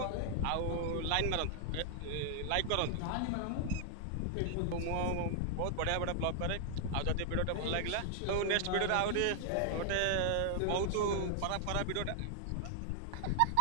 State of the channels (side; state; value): both; different; correlation -0.01